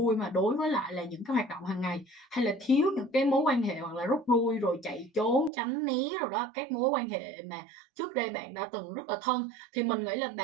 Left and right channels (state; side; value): drops out; left; at 5.5 s